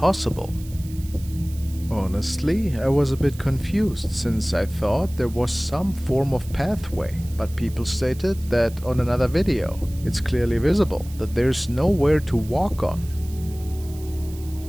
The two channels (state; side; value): noise; right; hiss, 20 dB below the sound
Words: Honestly, I was a bit confused, since I thought there was some form of pathway, but people stated that on another video, it's clearly visible that there's nowhere to walk on.